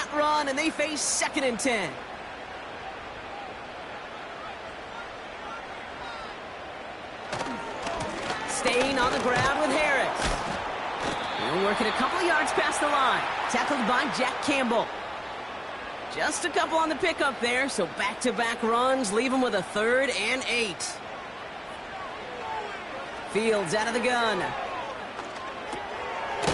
run, and they face 2nd and 10. Staying on the ground with Harris. He'll work it a couple of yards past the line. Tackled by Jack Campbell. Just a couple on the pickup there, so back-to-back runs leave him with a 3rd and 8. Fields out of the gun.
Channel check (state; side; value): identical; both; correlation 1.00